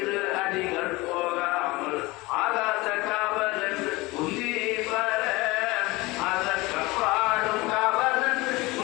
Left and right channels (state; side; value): quieter; right; 22.2 dB